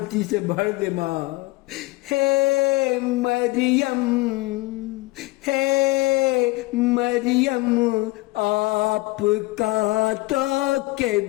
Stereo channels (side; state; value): right; quieter; 21.8 dB